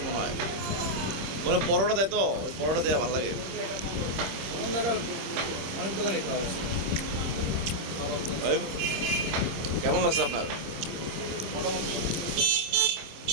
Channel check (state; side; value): late; left; 26 ms